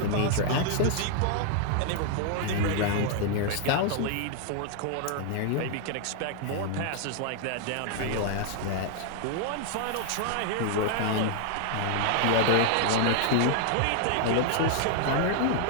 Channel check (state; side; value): different; both; correlation 0.00